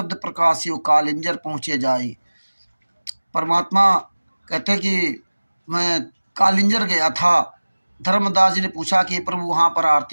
प्रकाशियो कालिंजर पहुँचे जाई। परमात्मा कहते कि मैं कालिंजर गया था। धर्मदास जी ने पूछा कि प्रभु वहाँ पर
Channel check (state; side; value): inverted; both; correlation -1.00